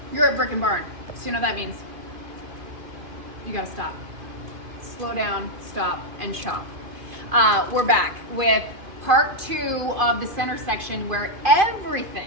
You're at Brick and Barn, so you know what that means. You gotta stop. Slow down, stop, and shop. We're back with part 2 of the center section where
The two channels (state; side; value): late; left; 2.5 ms